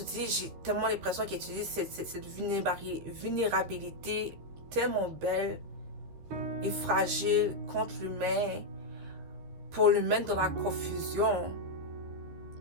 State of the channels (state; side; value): late; left; 13 ms